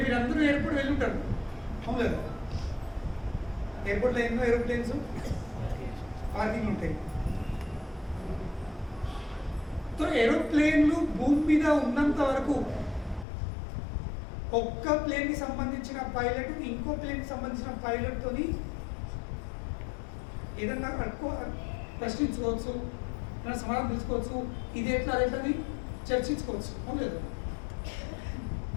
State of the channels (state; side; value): drops out; right; at 13.2 s